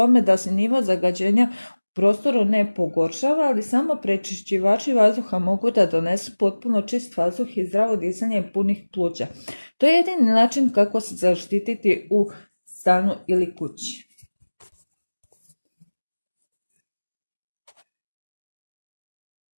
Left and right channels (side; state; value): both; inverted; correlation -1.00